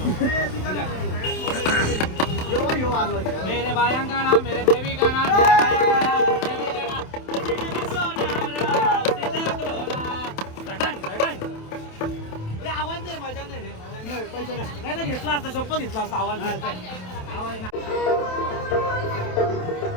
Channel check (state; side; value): late; right; 27 ms